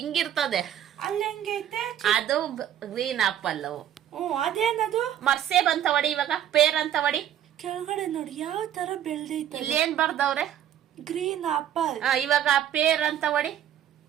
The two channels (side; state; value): left; quieter; 10.7 dB